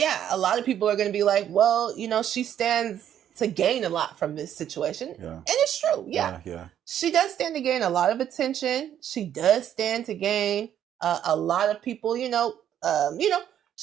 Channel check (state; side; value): quieter; left; 10.3 dB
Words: a lot of people are going to be like, well, you know, she stands to gain a lot from this situation. Yeah. And it's true. Yeah. She does stand to gain a lot of attention. She does stand to gain a lot of people, you know,